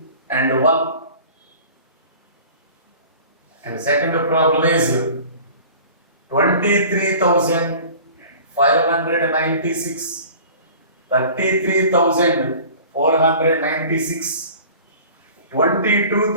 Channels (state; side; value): inverted; both; correlation -0.44